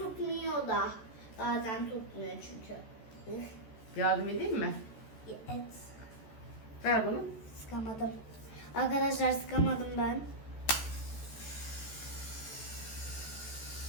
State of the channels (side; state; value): right; late; 14 ms